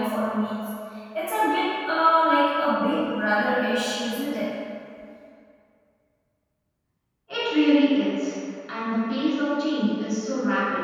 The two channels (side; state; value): both; identical; correlation 1.00